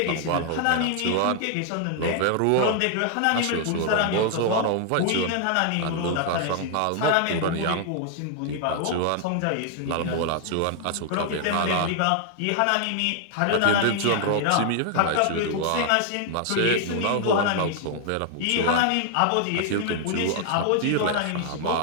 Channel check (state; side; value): different; both; correlation 0.00